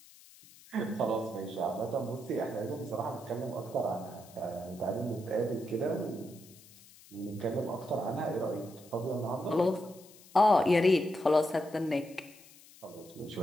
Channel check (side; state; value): left; noise; hiss, 23 dB below the sound